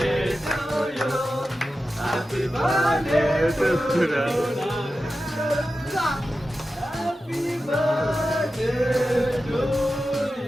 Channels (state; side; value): normal; both; correlation 0.92